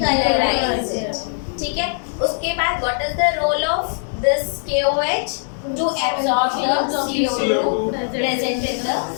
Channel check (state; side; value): silent; right; digital silence